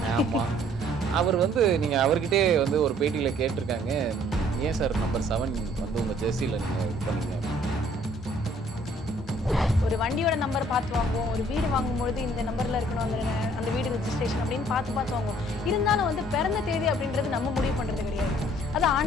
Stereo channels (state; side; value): normal; both; correlation 0.59